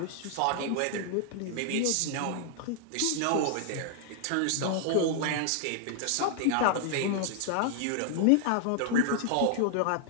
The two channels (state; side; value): different; both; correlation 0.00